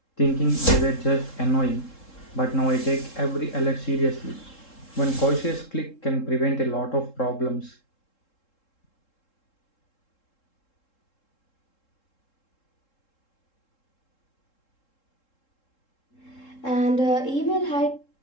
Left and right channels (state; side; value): late; right; 3.7 ms